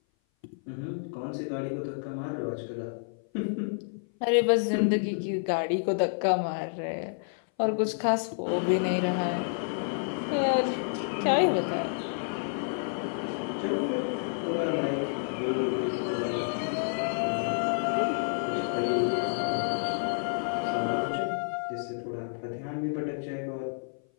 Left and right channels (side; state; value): right; silent; 56 dB below the other